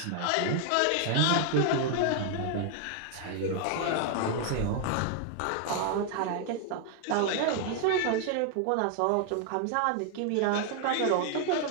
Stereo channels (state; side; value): different; both; correlation 0.00